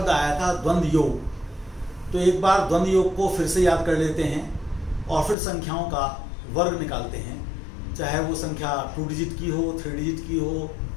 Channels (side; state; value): right; drops out; at 5.4 s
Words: आया था द्वंद्व योग। तो एक बार द्वंद्व योग को फिर से याद कर लेते हैं और फिर संख्याओं का वर्ग निकालते हैं, चाहे वो संख्या 2 डिजिट की हो, 3 डिजिट की हो,